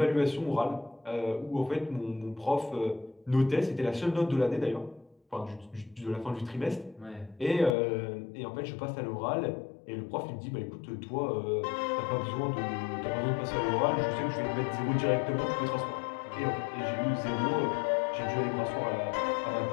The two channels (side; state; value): right; drops out; at 7.8 s